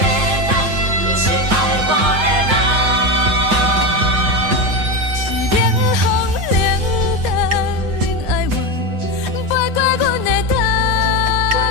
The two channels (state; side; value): late; left; 13 ms